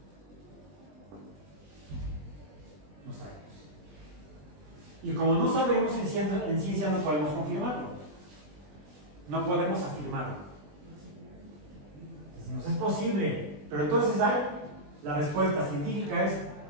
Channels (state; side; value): late; left; 20 ms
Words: no sabemos. Y como no sabemos, en ciencia no podemos confirmarlo. No podemos afirmarlo. Decimos, es posible, pero entonces la respuesta científica es